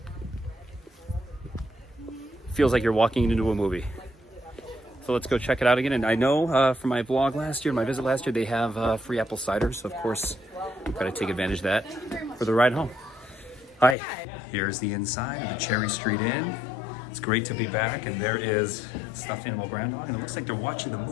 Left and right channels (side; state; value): right; drops out; at 14.0 s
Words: Feels like you're walking into a movie. So let's go check it out again. And I know from my vlog last year, my visit last year, they have free apple cider. So of course, I've got to take advantage of that for the ride home. Hi, here's the inside of the Cherry Street Inn. It's great to be back. And there is stuffed animal groundhog. And it looks like they're watching the